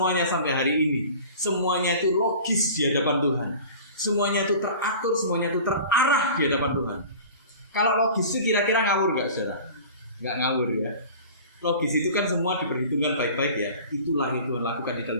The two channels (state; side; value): inverted; both; correlation -0.40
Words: sampai hari ini. Semuanya itu logis di hadapan Tuhan. Semuanya itu teratur, semuanya itu terarah di hadapan Tuhan. Kalau logis itu kira-kira ngawur gak, saudara? Gak ngawur ya. Logis itu kan semua diperhitungkan baik-baik ya. Itulah yang Tuhan lakukan di